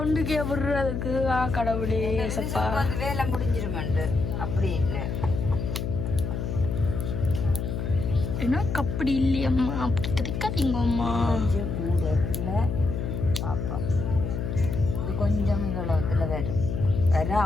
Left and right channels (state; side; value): noise; left; hum, 3 dB below the sound